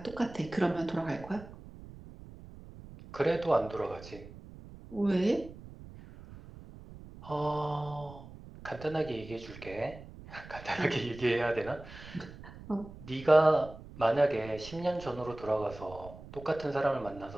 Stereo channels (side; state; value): right; noise; rumble, 16 dB below the sound